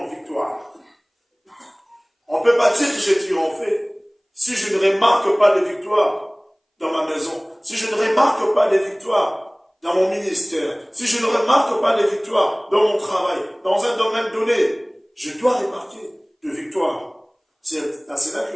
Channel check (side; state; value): both; identical; correlation 1.00